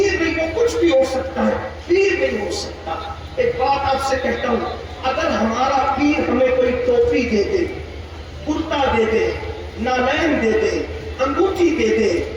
نہیں، وہ کچھ بھی ہو سکتا ہے، پیر نہیں ہو سکتا۔ ایک بات آپ سے کہتا ہوں، اگر ہمارا پیر ہمیں کوئی ٹوپی دے دے، کرتا دے دے، نالین دے دے، انگوٹھی دے دے،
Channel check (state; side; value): identical; both; correlation 1.00